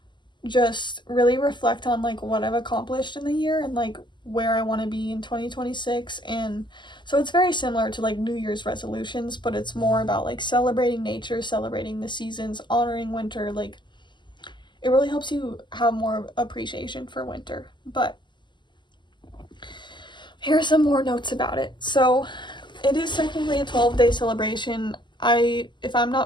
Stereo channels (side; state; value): right; late; 0.22 ms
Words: just really reflect on like what I've accomplished in the year and like where I want to be in 2026. And so it's very similar to like New Year's resolutions, but it's more about like celebrating nature, celebrating the seasons, honoring winter. Like, it really helps you have more appreciation for winter. But here are some more notes about it. So it is technically a 12-day celebration. If I'm